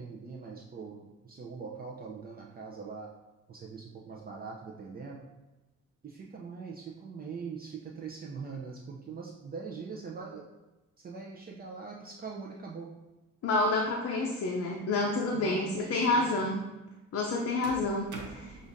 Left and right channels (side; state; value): both; normal; correlation 0.18